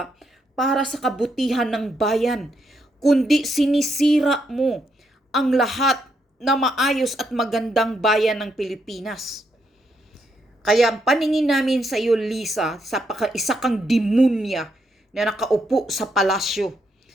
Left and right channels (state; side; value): normal; both; correlation 0.78